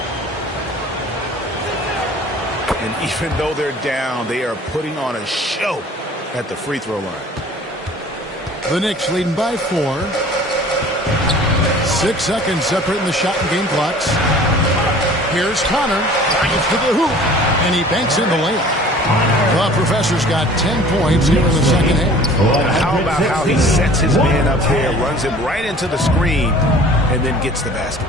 And even though they're down, they are putting on a show at the free throw line. The Knicks leading by 4. 6 seconds separating the shot and game clocks. Here's Connor. Drives to the hoop. And he banks in the layup. The Professor's got 10 points here in the second half. How about how he sets his man up there, runs him right into the screen, and then gets the basket.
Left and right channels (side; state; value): both; normal; correlation 0.47